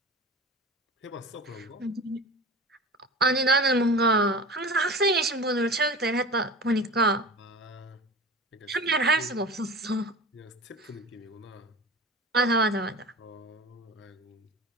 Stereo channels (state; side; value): normal; both; correlation 0.34